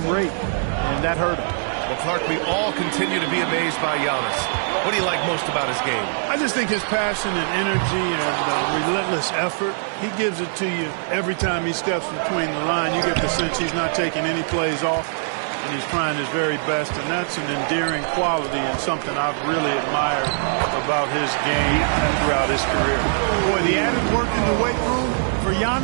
rate, and that hurt them. Well, Clark, we all continue to be amazed by Giannis. What do you like most about his game? I just think his passion and energy and relentless effort, he gives it to you every time he steps between the line. You get the sense he's not taking any plays off, and he's trying his very best, and that's an endearing quality and something I've really admired about his game throughout his career. Boy, the added work in the weight room for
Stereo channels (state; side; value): silent; left; 64 dB below the other